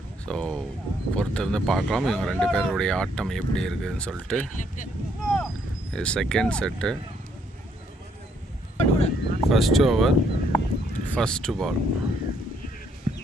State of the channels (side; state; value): both; normal; correlation 0.70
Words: ஸோ பொறுத்திருந்து பார்க்கலாம் இவங்க ரெண்டு பேருடைய ஆட்டம் எப்படி இருக்குதுன்னு சொல்லிட்டு. இது second set. First over, first ball.